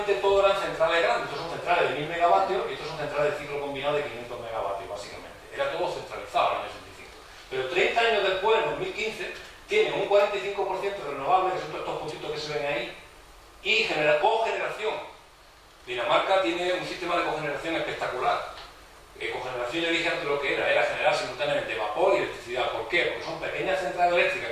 todo eran centrales grandes. Estos son centrales de 1000 megavatios y estos son centrales de ciclo combinado de 500 megavatios, básicamente. Era todo centralizado en el año 85. Pero 30 años después, en 2015, tienen un 45% renovable, que son todos estos puntitos que se ven ahí, y cogeneración. Dinamarca tiene un sistema de cogeneración espectacular. Cogeneración, yo dije antes lo que era generar simultáneamente vapor y electricidad. ¿Por qué? Porque son pequeñas centrales eléctricas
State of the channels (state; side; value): identical; both; correlation 1.00